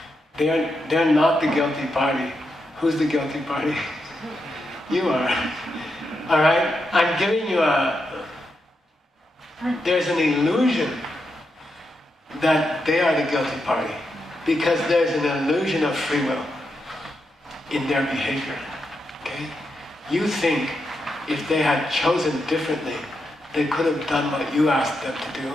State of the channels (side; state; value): both; normal; correlation 0.85